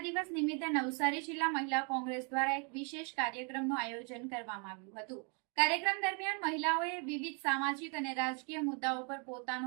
દિવસ નિમિત્તે નવસારી જિલ્લા મહિલા કોંગ્રેસ દ્વારા એક વિશેષ કાર્યક્રમનું આયોજન કરવામાં આવ્યું હતું। કાર્યક્રમ દરમિયાન મહિલાઓએ વિવિધ સામાજિક અને રાજકીય મુદ્દાઓ પર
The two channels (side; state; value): left; quieter; 36.2 dB